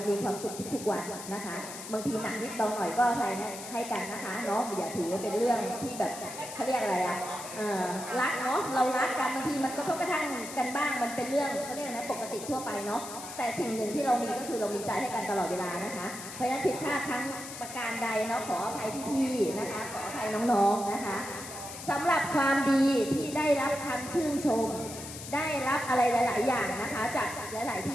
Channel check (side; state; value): left; noise; hiss, 11 dB below the sound